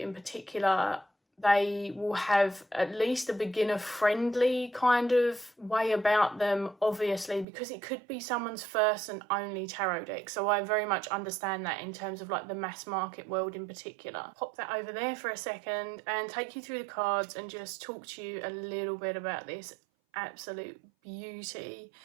particular, they will have at least a beginner-friendly kind of way about them, obviously, because it could be someone's first and only tarot deck. So I very much understand that in terms of like the mass market world in particular. Pop that over there for a second and take you through the cards and just talk to you a little bit about this absolute beauty.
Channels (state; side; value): drops out; left; at 7.5 s